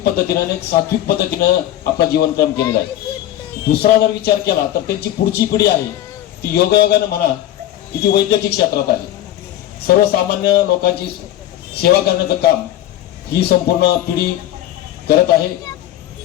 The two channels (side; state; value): right; quieter; 12.9 dB